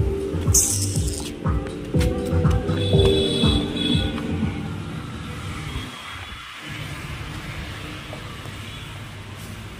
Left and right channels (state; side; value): identical; both; correlation 1.00